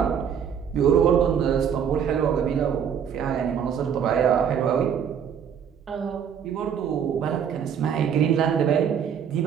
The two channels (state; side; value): quieter; left; 8.0 dB